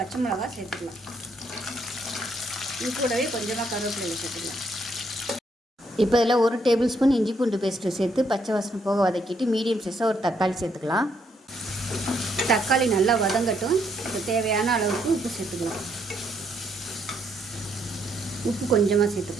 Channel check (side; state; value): both; normal; correlation 0.73